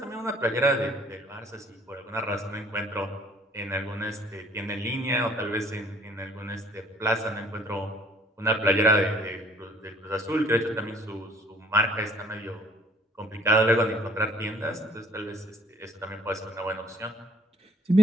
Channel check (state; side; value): normal; both; correlation 0.56